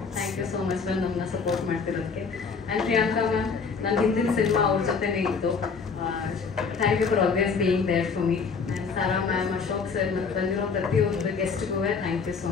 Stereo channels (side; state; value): right; quieter; 5.3 dB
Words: thank you so much ಬಂದು ನಮ್ಮನ್ನ ಸಪೋರ್ಟ್ ಮಾಡ್ತಿರೋದಕ್ಕೆ. ಆ್ಯಂಡ್ ಪ್ರಿಯಾಂಕಾ ಮ್ಯಾಮ್, ನನ್ನ ಹಿಂದಿನ ಸಿನಿಮಾ ಅವ್ರ ಜೊತೆನೇ ಇತ್ತು. Thank you for always being there for me. And Sara ma'am, Ashok sir, ಮತ್ತು ಬಂದಿರೋ ಪ್ರತಿಯೊಂದು ಗೆಸ್ಟ್ಗೂ ಥ್ಯಾಂಕ್ ಯು ಸೋ